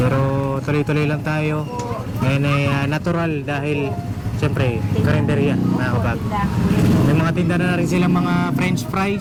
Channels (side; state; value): both; identical; correlation 1.00